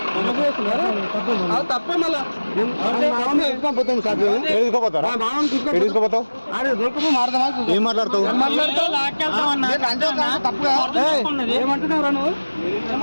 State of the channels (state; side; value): inverted; both; correlation -1.00